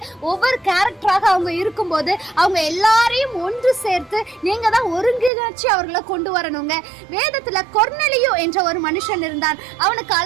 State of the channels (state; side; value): drops out; left; at 5.3 s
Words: ஒவ்வொரு கேரக்டராக அவங்க இருக்கும்போது அவங்க எல்லாரையும் ஒன்று சேர்த்து நீங்க தான் ஒருங்கிணைச்சு அவர்களை கொண்டு வரணுங்க. வேதத்துல கொர்நேலியு என்ற ஒரு மனுஷன் இருந்தான். அவனுக்கு